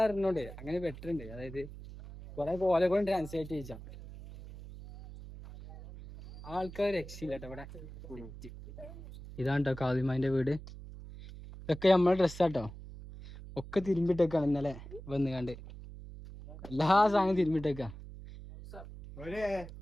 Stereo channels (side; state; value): right; noise; hum, 14 dB below the sound